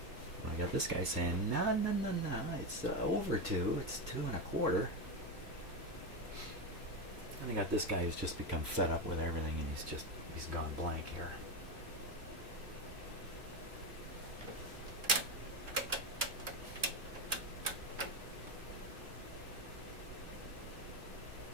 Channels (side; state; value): both; normal; correlation 0.13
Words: And I got this guy saying, no, it's over 2. It's 2 1/4. And I got this guy who's just become fed up with everything, and he's gone blank here.